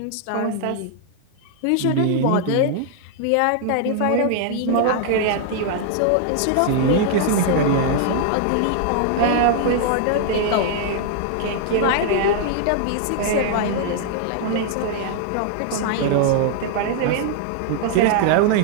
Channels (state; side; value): different; both; correlation 0.00